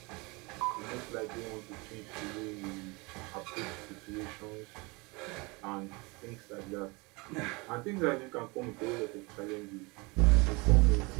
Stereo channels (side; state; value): left; quieter; 26.6 dB